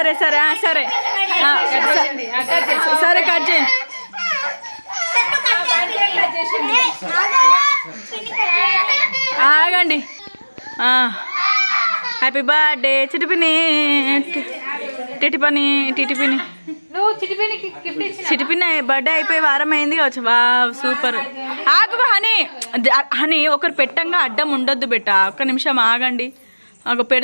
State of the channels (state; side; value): inverted; both; correlation -1.00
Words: సరే సరే సరే కట్ చేయి. ఆగండి. Happy birthday Chitipini. టిటిపని టిటిపిని చిటిపిని బర్త్డే అయిపోయి వారం అయింది కావచ్చు. వా సూపర్. ఆగు హనీ. హనీ ఒకరు పెట్టంగా అడ్డం ఉండొద్దు బెట్ట. ఒక్క నిమిషం ఆగండి. ఆగు